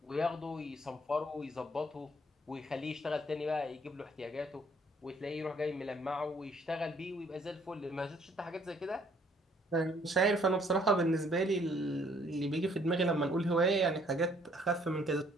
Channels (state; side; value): normal; both; correlation 0.63